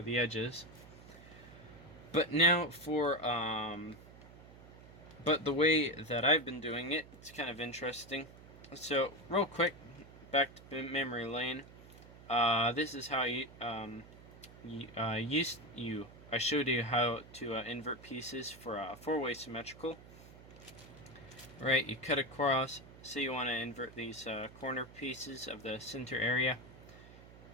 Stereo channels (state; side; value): noise; right; hum, 19 dB below the sound